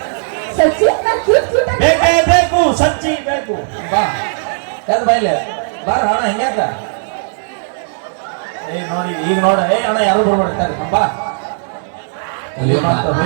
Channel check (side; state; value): left; silent; digital silence